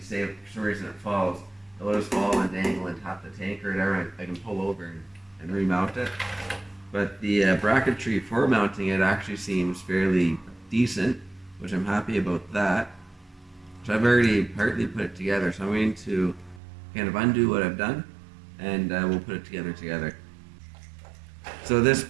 if for some reason it falls, it'll just fall and dangle and tap the tank or whatever. I can pull over and remount it. But the bracketry for mounting it actually seems fairly decent, which I'm happy about that. So I've already partly put it together, so I'm going to kind of undo what I've done and we'll put it together. So this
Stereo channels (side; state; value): left; drops out; at 16.6 s